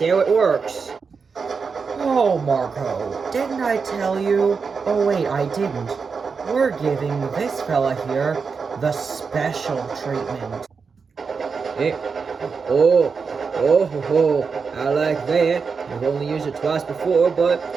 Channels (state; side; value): quieter; left; 5.3 dB